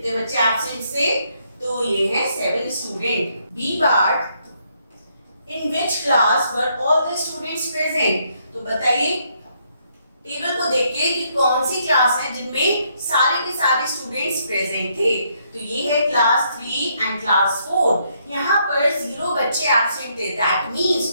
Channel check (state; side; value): inverted; both; correlation -0.73